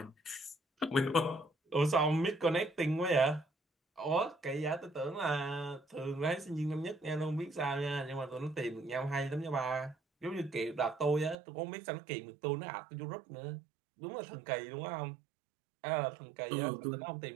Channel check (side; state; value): left; drops out; at 11.4 s